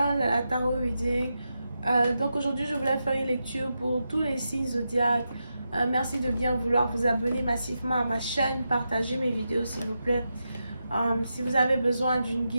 la Tarot Reading. Donc aujourd'hui je voulais faire une lecture pour tous les signes zodiaques. Merci de bien vouloir vous abonner massivement à ma chaîne, partager mes vidéos s'il vous plaît. Si vous avez besoin d'une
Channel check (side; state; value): both; inverted; correlation -0.88